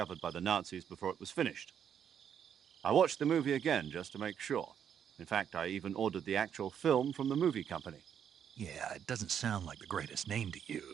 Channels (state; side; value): quieter; left; 8.5 dB